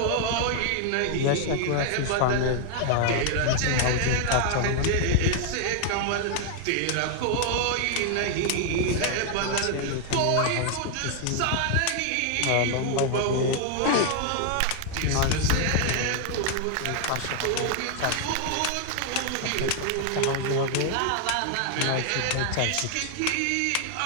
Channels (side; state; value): both; different; correlation 0.00